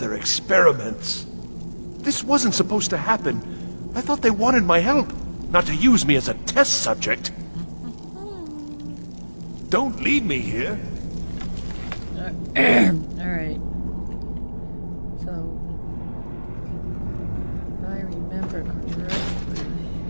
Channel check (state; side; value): inverted; both; correlation -1.00